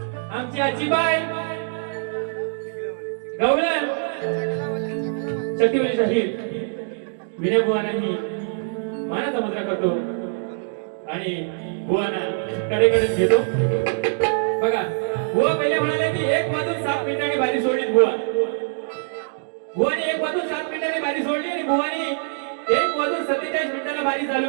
आमची आजीबाई गवळण शक्तिवली शाहीर विनय बुवांनाही मानाचा मुद्रा करतो आणि बुवांना कडेकडे घेतो बघा बुवा पहिले म्हणाले की 1 वाजून 7 मिनिटांनी बारी सोडली बुवा बुवाने 1 वाजून 7 मिनिटांनी बारी सोडली आणि बुवानी 1 वाजून 47 मिनिटाला बारी चालू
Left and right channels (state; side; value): silent; left; digital silence